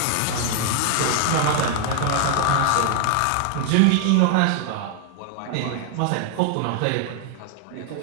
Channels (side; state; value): both; different; correlation 0.00